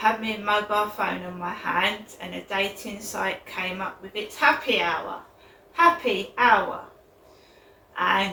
my mobile phone on my hand, and a dating site came up with its happy hour.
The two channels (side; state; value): both; identical; correlation 1.00